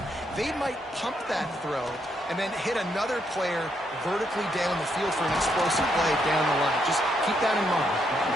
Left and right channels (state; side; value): normal; both; correlation 0.77